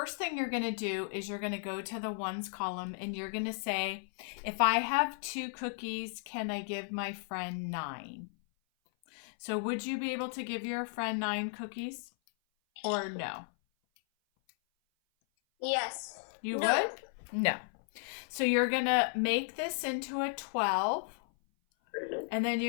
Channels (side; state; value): right; silent; 55 dB below the other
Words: thing you're going to do is you're going to go to the ones column and you're going to say, if I have 2 cookies, can I give my friend 9? So would you be able to give your friend 9 cookies or no? Yes. You would? No. So you're going to make this into a 12, and then